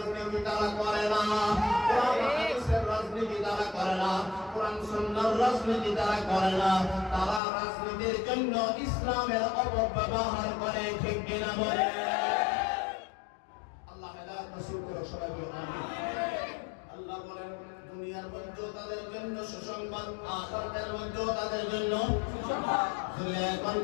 তারা করে না, কোরআন হাদিসের রাজনীতি তারা করে না, কোরআন সুন্নাহর রাজনীতি তারা করে না, তারা রাজনীতির জন্য ইসলামের অপব্যবহার করে। ঠিক কিনা বলে? আল্লাহ হেদায়েত নসিব করে সবাই বলুন আমিন। আল্লাহ বলেন দুনিয়ার মধ্যে তাদের জন্য সুসংবাদ, আখিরাতের মধ্যে তাদের জন্য সুসংবাদ, দুনিয়ার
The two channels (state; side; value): drops out; right; at 7.4 s